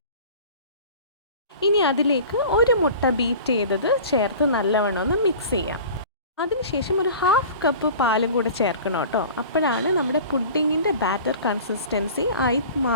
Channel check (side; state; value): both; inverted; correlation -0.41